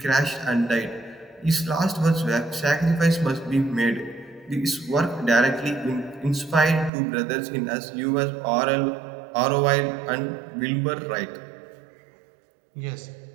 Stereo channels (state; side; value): drops out; left; at 6.9 s